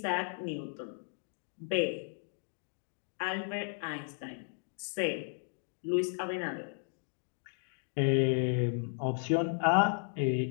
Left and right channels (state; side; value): silent; right; digital silence